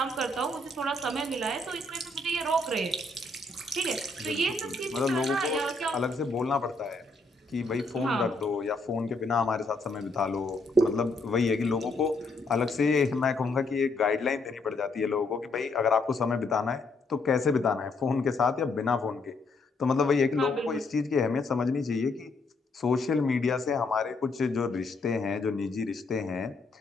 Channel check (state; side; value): quieter; right; 3.1 dB